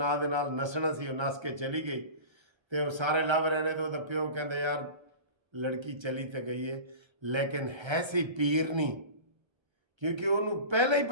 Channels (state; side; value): late; left; 1.3 ms